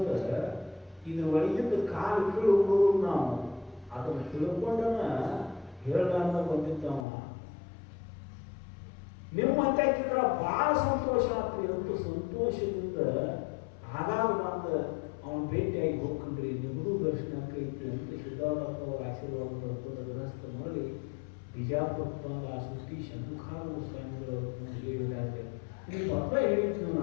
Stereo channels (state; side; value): drops out; right; at 7.1 s